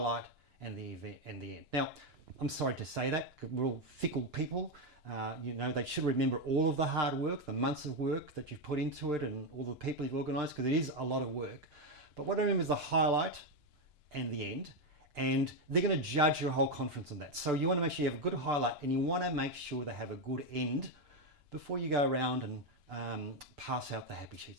and the event and the end. Now, I'm sorry to say that, we're all fickle people. They should remember all of the hard work, the months of work that you've put into it and all the people you've organised, because it is a lot of work. But what I remember is the highlight and the end, and they're going to judge your whole conference on that. So you want to make sure you have a good highlight and you want to make sure they have a good end before you go around and pass out the happy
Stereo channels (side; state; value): left; late; 2.9 ms